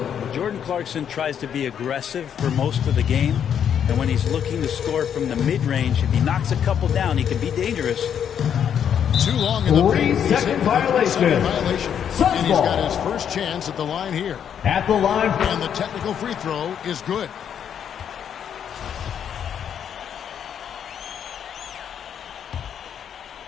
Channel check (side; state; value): right; quieter; 8.6 dB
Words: Jordan Clarkson tries to be aggressive for most of the game, and when he's looking to score from the mid-range, if he knocks a couple down, he can be dangerous. Too long in the paint. 3-second violation. And he's got his first chance at the line here. At the line. And the technical free throw is good.